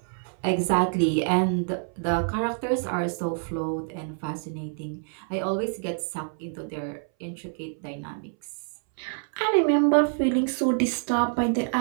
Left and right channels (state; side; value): silent; left; 60 dB below the other